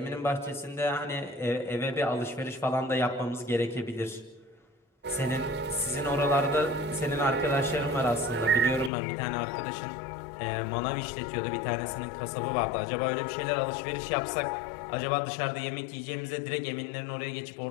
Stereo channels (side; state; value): right; drops out; at 8.9 s